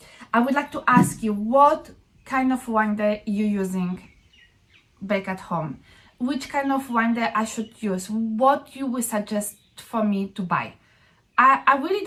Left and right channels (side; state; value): both; identical; correlation 1.00